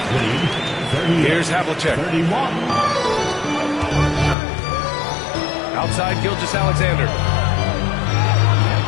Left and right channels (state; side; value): drops out; right; at 4.4 s